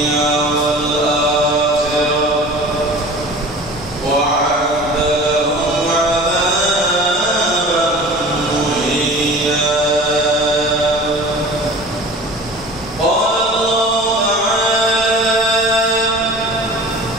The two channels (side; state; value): left; noise; rumble, 19 dB below the sound